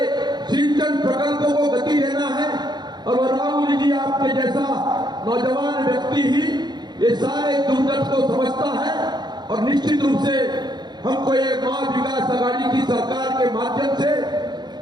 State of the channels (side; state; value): left; late; 0.21 ms